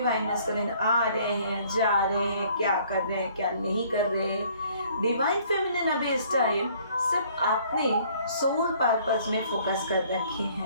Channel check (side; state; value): both; inverted; correlation -0.59